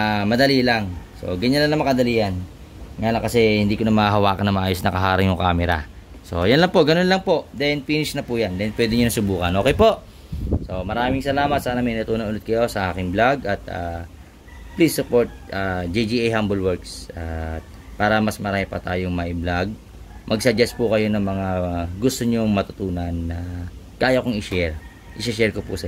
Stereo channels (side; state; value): both; identical; correlation 1.00